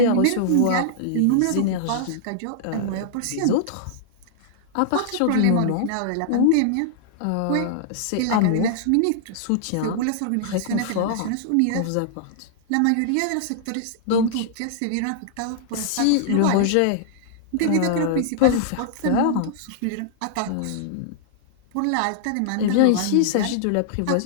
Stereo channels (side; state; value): both; different; correlation -0.01